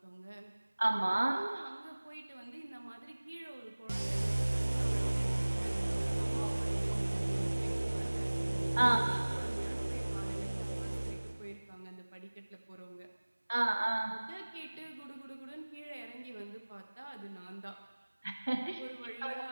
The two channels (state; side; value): inverted; both; correlation -1.00